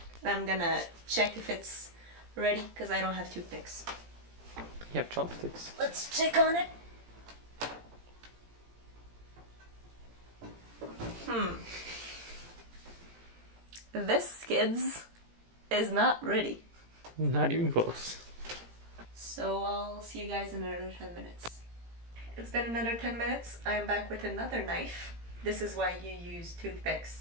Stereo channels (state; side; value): late; left; 17 ms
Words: and I'm gonna check if it's ready, because I don't have toothpicks. You have chopsticks. Let's check on it. This, kids, is not ready. Not even close. So I'll see you guys in another 10 minutes. It's been another 10 minutes. I am back with another knife. This is why you use toothpicks,